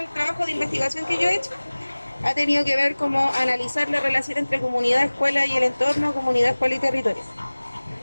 trabajo de investigación que yo he hecho ha tenido que ver como analizar la relación entre comunidad, escuela y el entorno, comunidad, escuela y territorio.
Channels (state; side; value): inverted; both; correlation -1.00